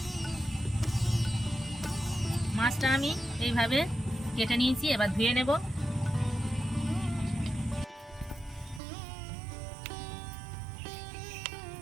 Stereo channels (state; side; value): drops out; left; at 8.8 s